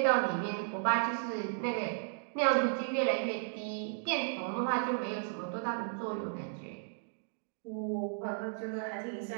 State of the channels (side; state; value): left; silent; digital silence